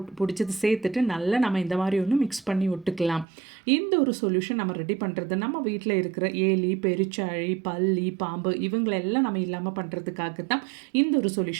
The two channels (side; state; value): left; drops out; at 3.2 s